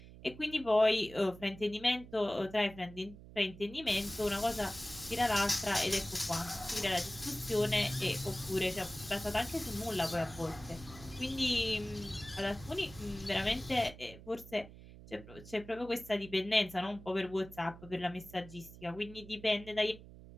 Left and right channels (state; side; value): noise; right; hum, 17 dB below the sound